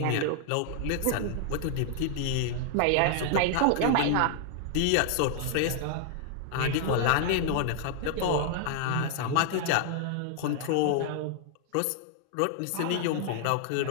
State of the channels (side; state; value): both; different; correlation -0.01